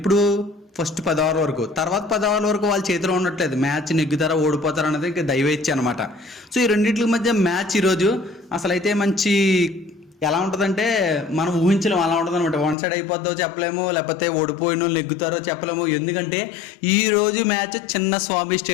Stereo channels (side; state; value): right; drops out; at 12.8 s